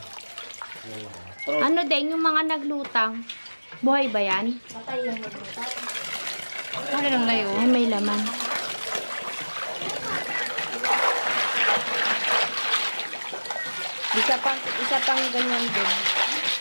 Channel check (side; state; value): both; inverted; correlation -1.00